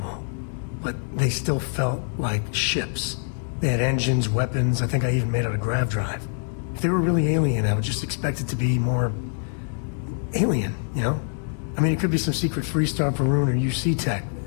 But they still felt like ships. They had engines, weapons, I think I even made out a grav drive. If they were really alien, I would just expect it to be more... alien, you know? I mean, it could be some secret Freestar Varun or UC tech.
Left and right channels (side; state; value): right; silent; 62 dB below the other